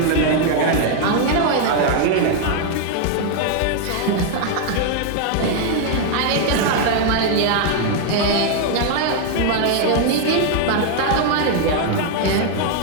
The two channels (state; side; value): different; both; correlation 0.00